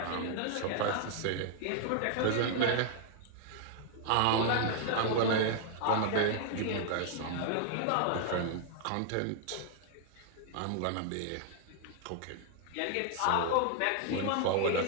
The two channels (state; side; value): different; both; correlation 0.00